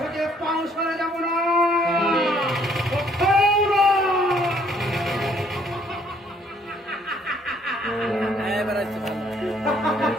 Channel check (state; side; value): normal; both; correlation 0.64